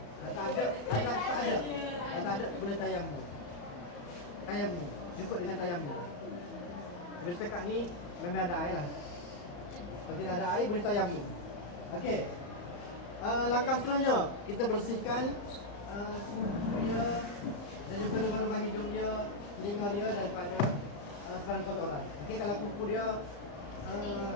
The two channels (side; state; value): right; late; 35 ms